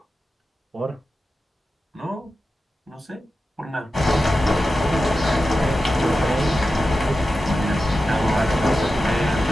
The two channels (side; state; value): both; normal; correlation 0.92